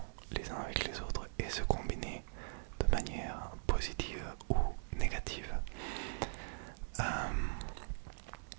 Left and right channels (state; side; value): silent; left; digital silence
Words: les uns avec les autres et se combiner de manière positive ou négative.